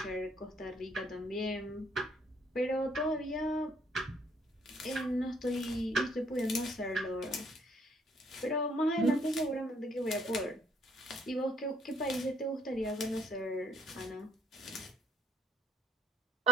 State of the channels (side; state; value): both; normal; correlation 0.67